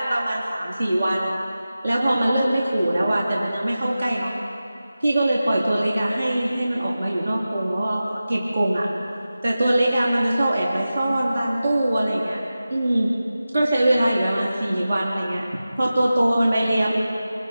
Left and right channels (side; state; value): both; inverted; correlation -0.95